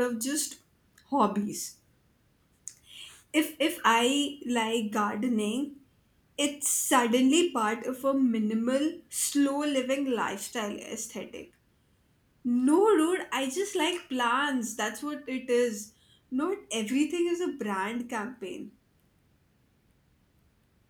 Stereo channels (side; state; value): both; identical; correlation 1.00